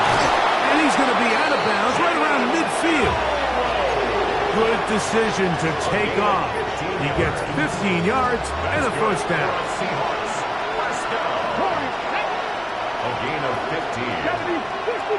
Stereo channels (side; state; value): both; identical; correlation 1.00